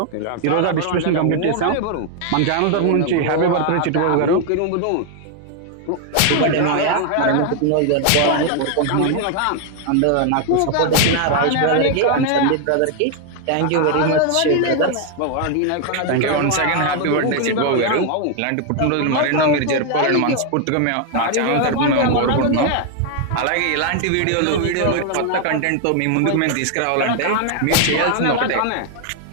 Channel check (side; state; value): both; different; correlation 0.00